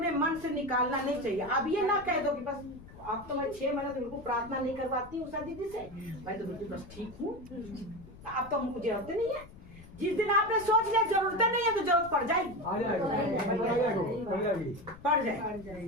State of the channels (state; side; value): noise; left; rumble, 19 dB below the sound